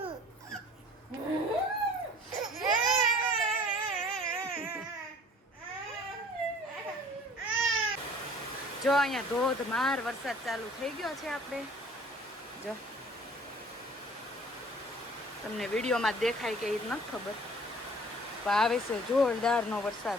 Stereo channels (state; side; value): normal; both; correlation 0.50